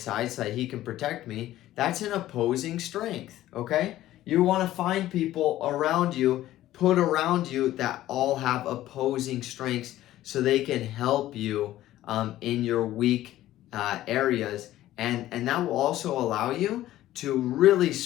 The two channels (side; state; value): right; quieter; 14.4 dB